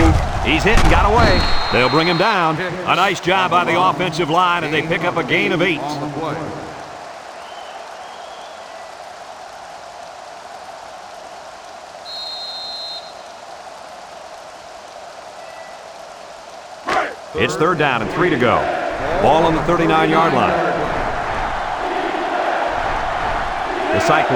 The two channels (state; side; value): identical; both; correlation 1.00